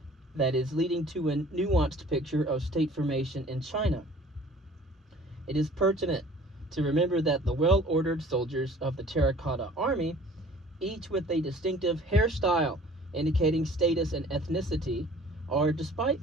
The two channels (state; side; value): normal; both; correlation 0.50